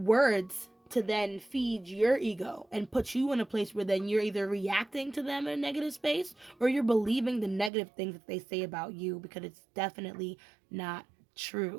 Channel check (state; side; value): drops out; left; at 7.7 s